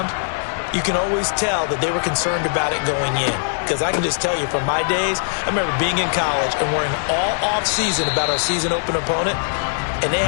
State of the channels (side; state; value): right; silent; digital silence